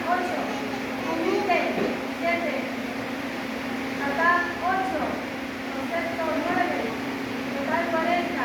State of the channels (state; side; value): identical; both; correlation 1.00